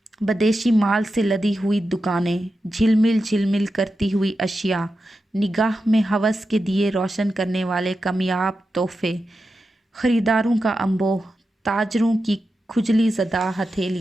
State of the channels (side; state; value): both; normal; correlation 0.90